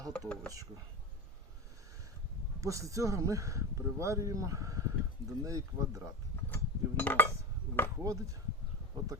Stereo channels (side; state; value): both; normal; correlation 0.26